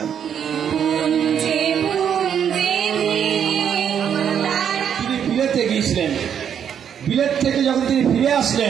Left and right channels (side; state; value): left; quieter; 8.5 dB